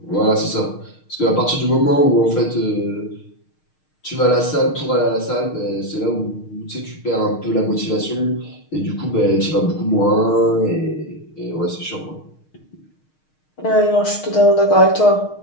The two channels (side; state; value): right; late; 6.5 ms